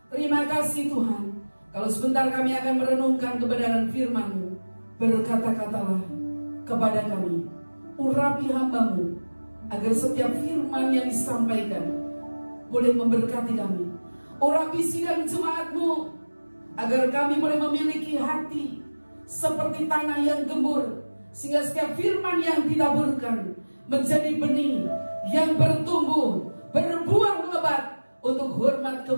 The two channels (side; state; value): both; inverted; correlation -1.00